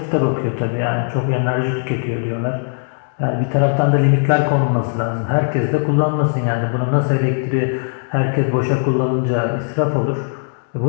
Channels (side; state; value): right; silent; digital silence